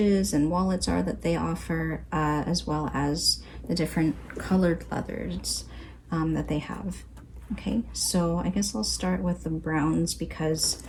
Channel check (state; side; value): identical; both; correlation 1.00